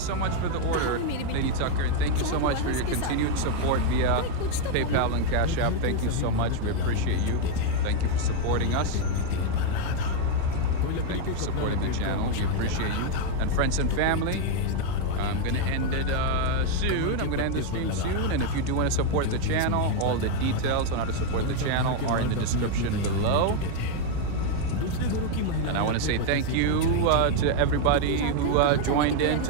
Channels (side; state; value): both; different; correlation 0.01